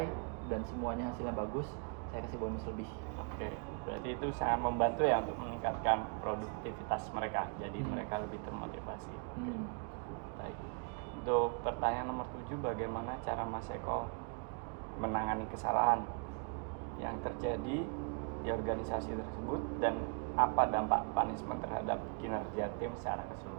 dan semuanya hasilnya bagus, saya kasih bonus lebih. Berarti itu sangat membantu ya untuk meningkatkan produktivitas mereka. Jadi mereka lebih termotivasi. Baik. Untuk pertanyaan nomor 7, bagaimana cara Mas Eko menangani kesalahan yang terjadi di organisasi tersebut dan apa dampak punishment terhadap kinerja tim secara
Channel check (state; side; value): quieter; left; 38.8 dB